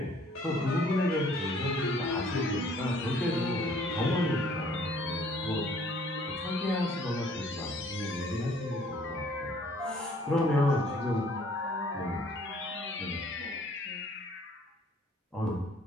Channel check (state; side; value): normal; both; correlation 0.58